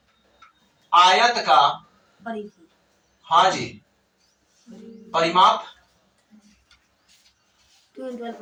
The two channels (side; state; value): both; identical; correlation 1.00